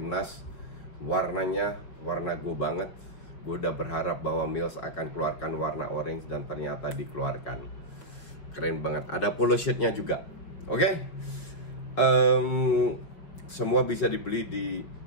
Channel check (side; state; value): right; late; 5.4 ms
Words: Warnanya warna gue banget. Gue udah berharap bahwa Mills akan keluarkan warna orange dan ternyata dikeluarkan. Keren banget. Ada polo shirtnya juga. Oke. Semua bisa dibeli di